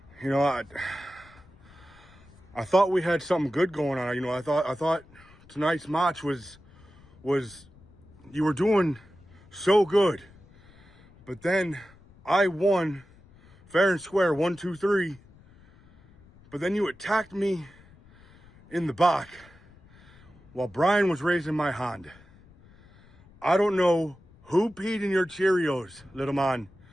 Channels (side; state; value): left; noise; rumble, 26 dB below the sound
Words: You know, I thought we had something good going on. You know, I thought tonight's match was was you were doing so good, but then I won fair and square, 1, 2, 3, but then you attacked me in the back while Brian was raising my hand. I don't know who peed in your Cheerios, little man,